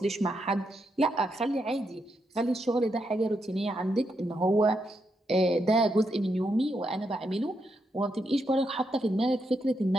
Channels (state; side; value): normal; both; correlation 0.81